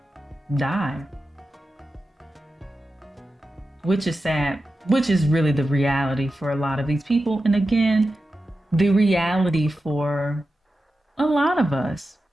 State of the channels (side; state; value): both; normal; correlation 0.92